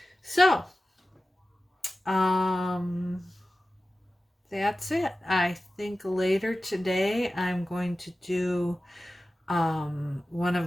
So, that's it. I think later today I'm going to do one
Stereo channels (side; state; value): both; normal; correlation 0.95